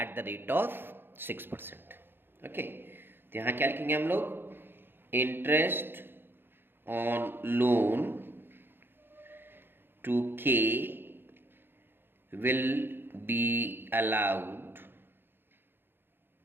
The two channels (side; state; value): left; late; 0.10 ms